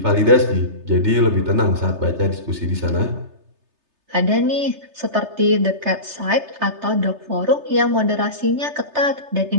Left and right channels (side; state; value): left; late; 3.3 ms